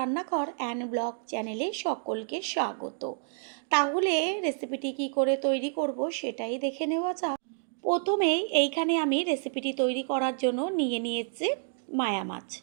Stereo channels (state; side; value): silent; left; 58 dB below the other